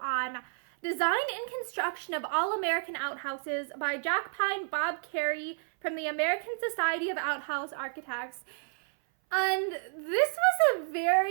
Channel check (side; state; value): left; silent; 57 dB below the other